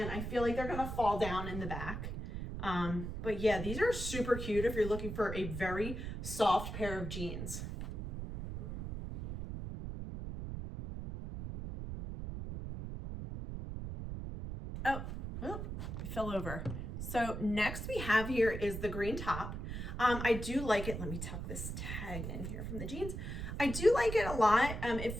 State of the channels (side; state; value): right; noise; rumble, 6 dB below the sound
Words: I feel like they're gonna fall down in the back. But yeah, these are super cute if you're looking for a very soft pair of jeans. Oh, it fell over. So next we have here is the green top. I do like it. Let me tuck this tag in here from the jeans. I do like it a lot. It